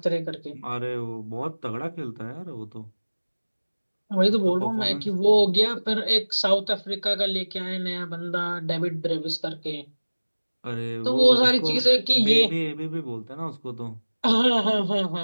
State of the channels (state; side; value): inverted; both; correlation -1.00